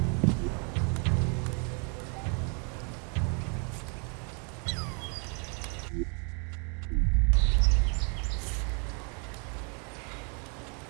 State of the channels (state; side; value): quieter; left; 36.4 dB